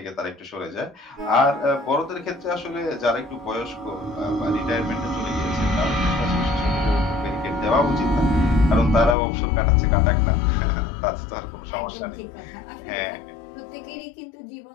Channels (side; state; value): right; drops out; at 9.2 s